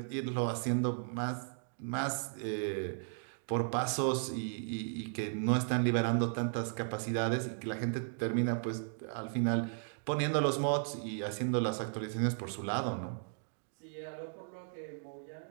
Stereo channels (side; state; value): left; silent; digital silence